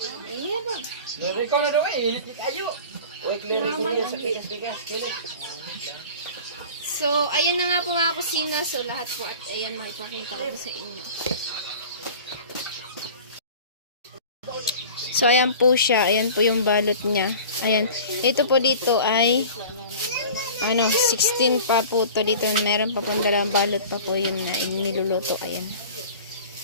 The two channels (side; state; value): both; inverted; correlation -0.40